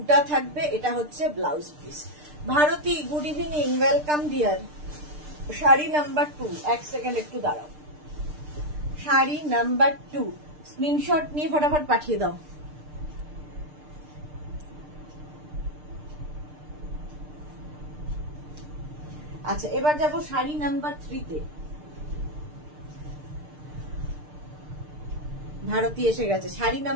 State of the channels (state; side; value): late; left; 6.7 ms